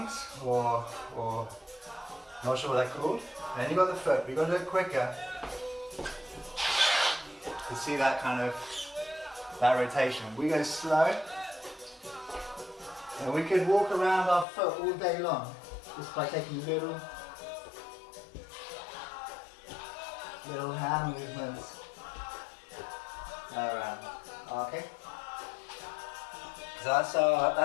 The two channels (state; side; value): drops out; right; at 14.5 s